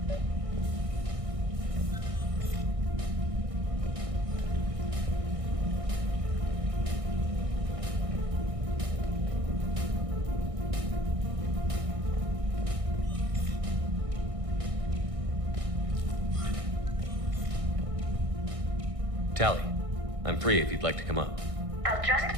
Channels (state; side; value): late; left; 1.6 ms